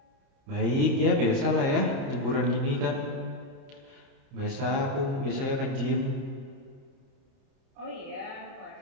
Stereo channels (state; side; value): late; left; 30 ms